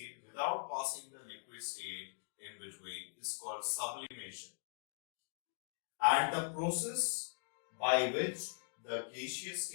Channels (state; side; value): silent; right; digital silence